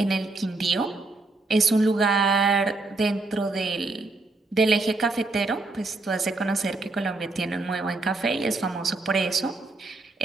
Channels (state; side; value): quieter; left; 3.3 dB